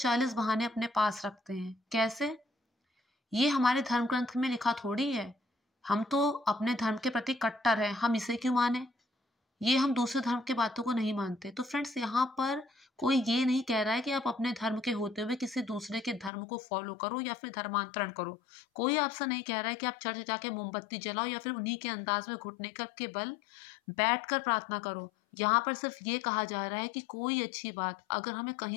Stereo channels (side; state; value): right; drops out; at 16.3 s